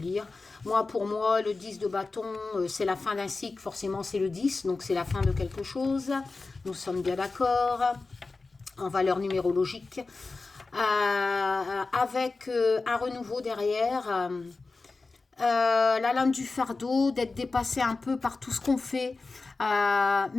lire. Moi, pour moi, le 10 de bâton, c'est la fin d'un cycle, forcément c'est le 10, donc c'est la fin de quelque chose, nous sommes bien d'accord, en valeur numérologique, avec un renouveau derrière, la lame du fardeau, d'être dépassé un peu par tout ce qu'on fait.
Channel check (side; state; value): right; quieter; 3.8 dB